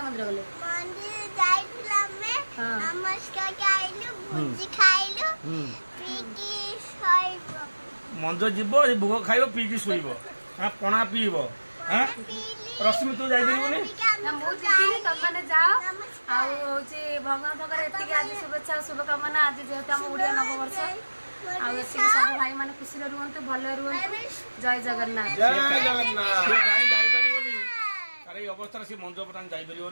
मंदिर गले मंदिर जाइला में नमस्कार खाइलु भुजी खाइलु पीकी सोइबो मंदिर जीवो भोग खाइबो पीकी सोइबो हां पणा पीबो हां रश्मि तू जाई दिबोनी ना मु जीनी तब माने जाओ आ होची भगवान भगर एतिके आज शुभेच्छा शुभकामना आज जेहेतु हम ओडिया नववर्ष आ एतिके सब भाई माने खुशी रहंतु भले रहंतु जय जगन्नाथ जय जगन्नाथ से काई जाई परिबोनी अरे अवस्था से मंदिर पतान जाई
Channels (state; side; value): inverted; both; correlation -1.00